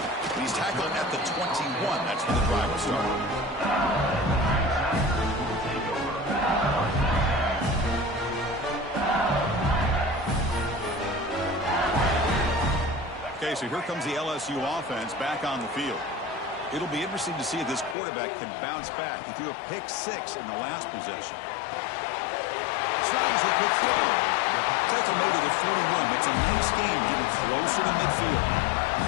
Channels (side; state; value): right; drops out; at 17.9 s